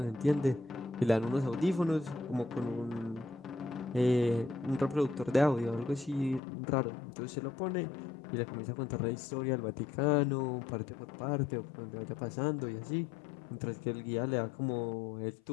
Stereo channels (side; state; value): right; drops out; at 6.4 s